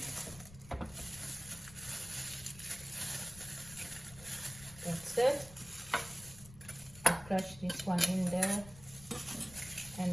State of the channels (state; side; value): noise; left; rumble, 18 dB below the sound